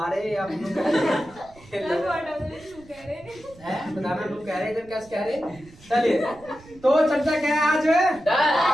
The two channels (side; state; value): right; noise; rumble, 24 dB below the sound